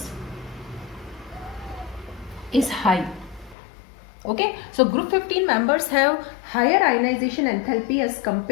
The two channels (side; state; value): right; drops out; at 3.6 s